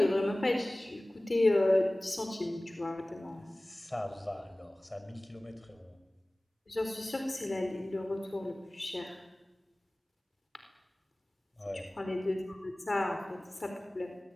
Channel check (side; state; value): both; normal; correlation 0.98